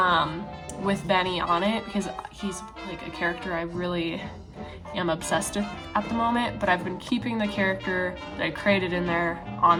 with Benny on it, because he's like a character I really am obsessed with at the moment, but I've been keeping the character that I created in there on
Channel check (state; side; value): identical; both; correlation 1.00